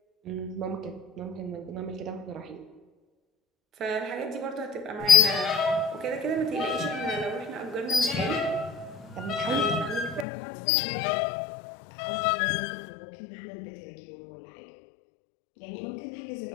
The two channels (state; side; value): drops out; right; at 10.2 s